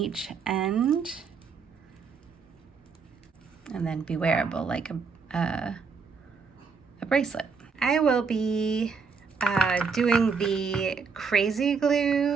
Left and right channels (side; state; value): left; quieter; 5.2 dB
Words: end and then be wearable like a bracelet. I will be doing the crazy